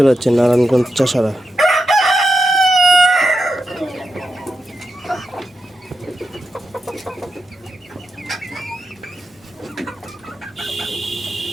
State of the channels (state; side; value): normal; both; correlation 0.88